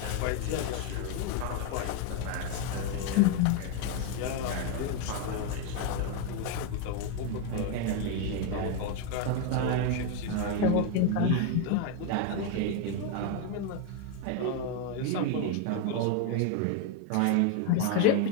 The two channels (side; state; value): both; different; correlation 0.01